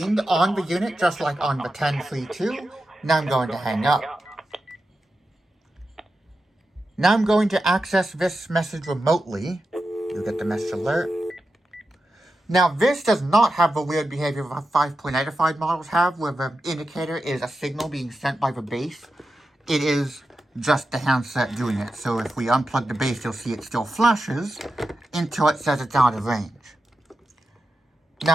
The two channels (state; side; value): normal; both; correlation 0.90